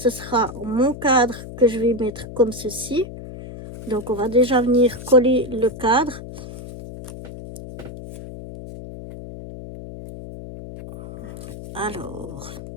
sera mon cadre que je vais mettre comme ceci. Donc on va déjà venir coller le cadre. Alors,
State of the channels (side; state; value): left; noise; hum, 12 dB below the sound